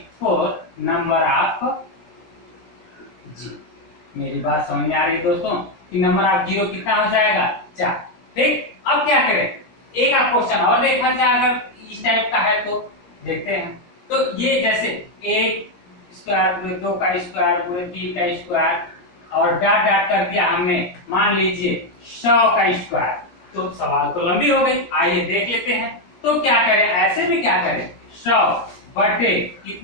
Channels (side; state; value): right; late; 17 ms